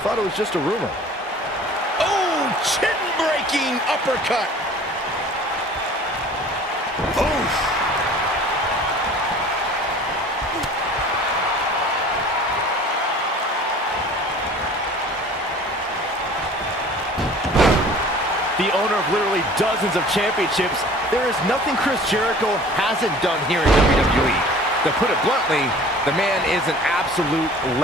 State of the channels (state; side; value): normal; both; correlation 0.46